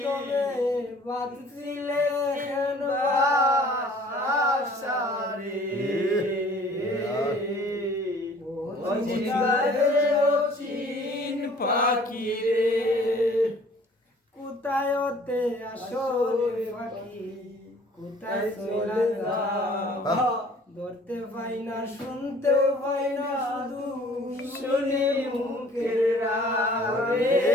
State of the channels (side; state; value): both; normal; correlation 0.53